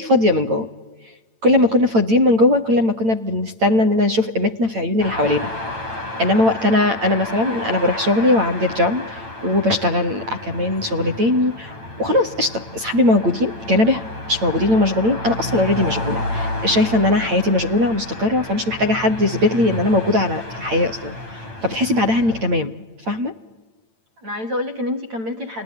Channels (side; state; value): left; late; 8.9 ms